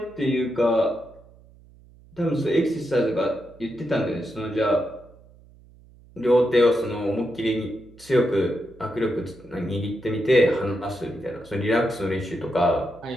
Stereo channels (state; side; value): noise; right; hum, 25 dB below the sound